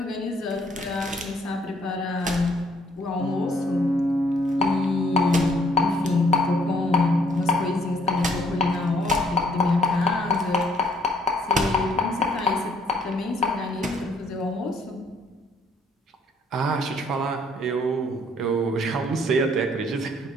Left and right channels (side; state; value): both; normal; correlation 0.65